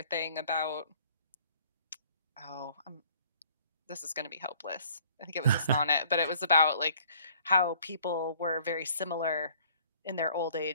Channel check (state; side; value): inverted; both; correlation -0.56